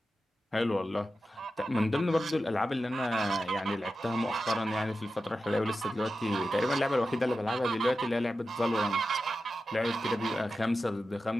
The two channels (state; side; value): normal; both; correlation 0.92